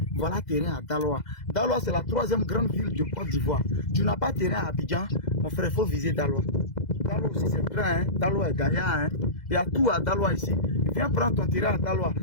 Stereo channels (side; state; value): right; late; 2.0 ms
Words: Voilà terrain à Daloa. Daloa, c'est la 3e grande ville de Côte d'Ivoire. Tu n'as pas terrain à Abidjan, mon frère, il faut viser Daloa. Daloa aussi c'est grand, hein. Daloa est gagnant, hein. Il y a tout à Daloa ici. Viens prendre ton terrain à Daloa.